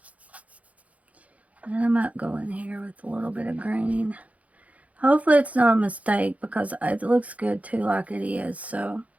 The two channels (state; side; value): late; left; 0.068 ms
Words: And I might go in here with a little bit of green. Hopefully it's not a mistake because it looks good too like it is. So